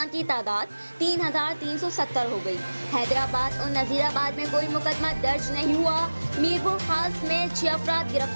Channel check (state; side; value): inverted; both; correlation -1.00